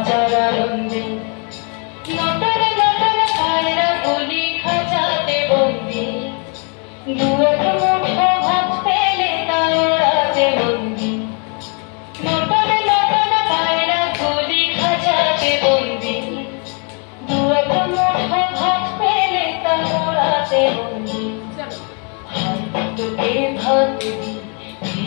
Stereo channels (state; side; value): quieter; right; 37.7 dB